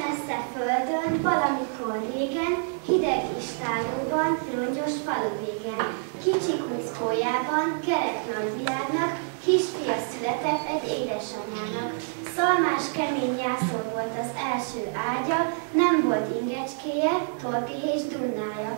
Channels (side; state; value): left; silent; 60 dB below the other